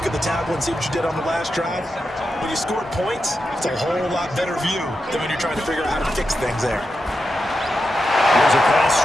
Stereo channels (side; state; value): both; normal; correlation 0.88